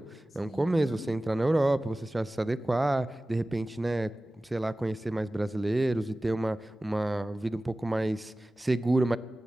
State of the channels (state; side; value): normal; both; correlation 0.97